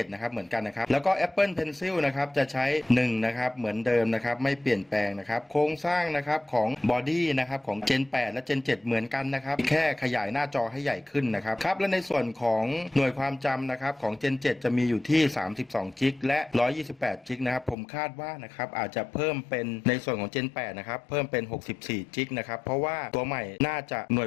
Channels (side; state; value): right; drops out; at 17.8 s